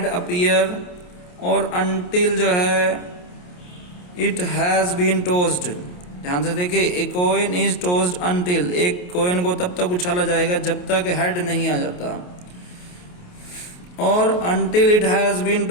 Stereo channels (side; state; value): right; late; 28 ms